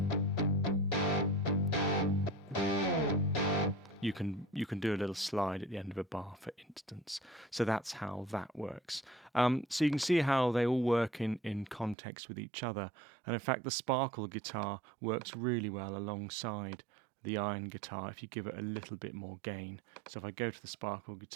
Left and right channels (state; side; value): drops out; left; at 12.0 s